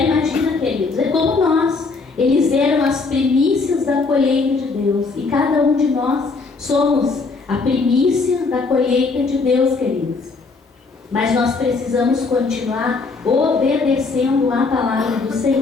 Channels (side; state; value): right; quieter; 4.1 dB